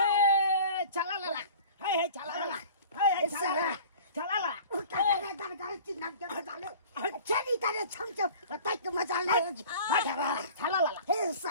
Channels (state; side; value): inverted; both; correlation -0.43